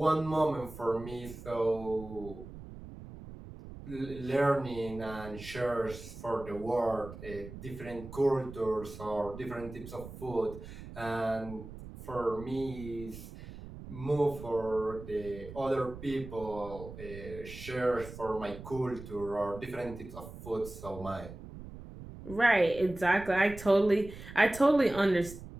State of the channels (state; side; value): noise; right; rumble, 13 dB below the sound